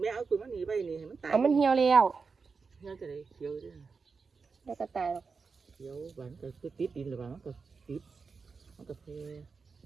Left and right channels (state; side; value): quieter; left; 4.9 dB